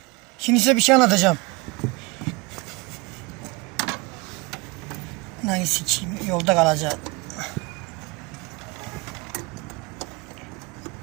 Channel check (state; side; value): quieter; left; 25.1 dB